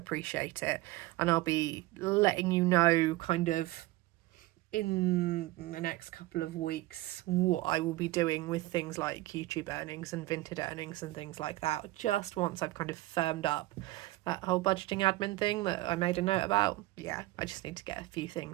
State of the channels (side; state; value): left; quieter; 18.6 dB